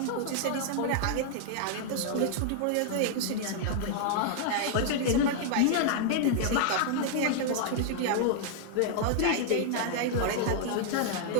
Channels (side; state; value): both; different; correlation -0.01